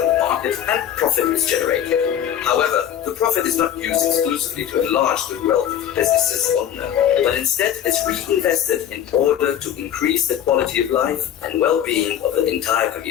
the market and profit is generated. However, the profit is not used exclusively to enlarge the wealth of the business's owner, but instead is reinvested in order to increase the quality of life and well-being of the entire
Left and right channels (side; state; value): right; quieter; 10.1 dB